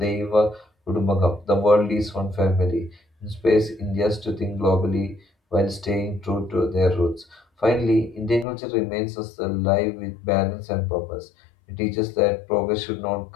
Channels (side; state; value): right; drops out; at 8.5 s